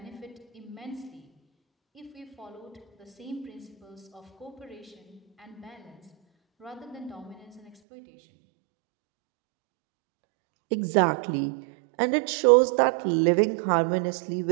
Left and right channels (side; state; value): left; drops out; at 7.7 s